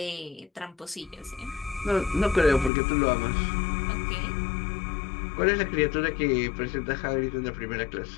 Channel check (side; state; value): right; drops out; at 2.7 s